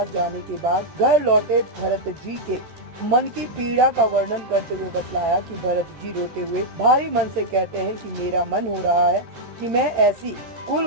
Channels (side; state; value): left; late; 14 ms